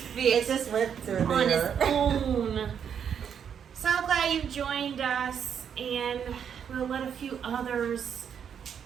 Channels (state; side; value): quieter; left; 7.9 dB